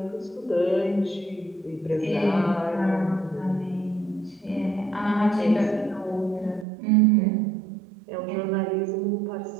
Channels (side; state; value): left; drops out; at 6.7 s